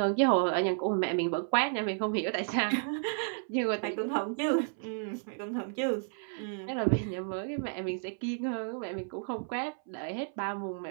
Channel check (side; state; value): left; silent; 56 dB below the other